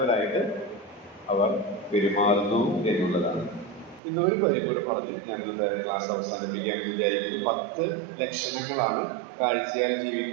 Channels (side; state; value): left; drops out; at 4.0 s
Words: അവർ പെരുമാറുന്നു എന്നുള്ളതാണ്. ഇന്നൊരു കാര്യം കൂടെ പറഞ്ഞ് ഞാനിത് ക്ലാസ് അവസാനിപ്പിക്കാൻ വിചാരിക്കുന്നു. 10 ലക്ഷണങ്ങളാണ് കാഴ്ചയാൽ